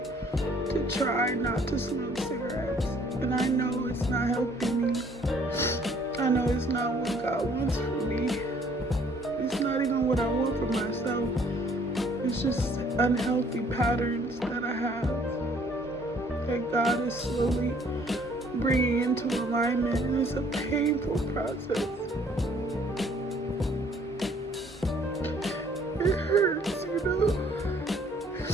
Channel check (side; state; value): both; normal; correlation 0.60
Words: to try not to smoke cigarettes. And I know it's not helping me. I know it's not what God wants for me. It's not even what I want for myself. It's just unhealthy patterns that I have that God is slowly bringing into alignment, and it's a painful process. It hurts, you know,